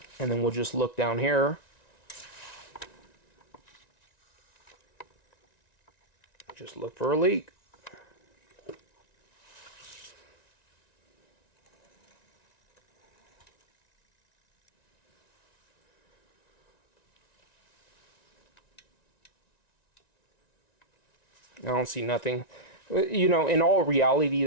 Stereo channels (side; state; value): right; late; 1.9 ms